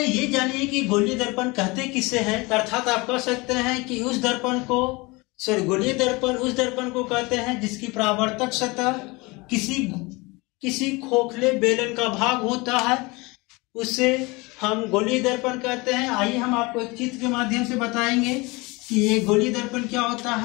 ये जानिए कि गोलीय दर्पण कहते किसे हैं। अर्थात आप कह सकते हैं कि उस दर्पण को गोलीय दर्पण उस दर्पण को कहते हैं जिसकी परावर्तक सतह किसी खोखले बेलन का भाग होता है, उससे हम गोलीय दर्पण कहते हैं। आइए हम आपको एक चित्र के माध्यम से बताएंगे कि ये गोलीय दर्पण क्या होता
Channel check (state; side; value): quieter; right; 24.8 dB